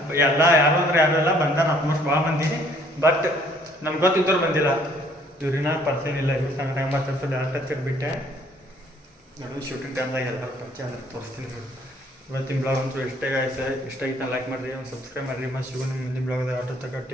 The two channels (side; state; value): both; normal; correlation 0.61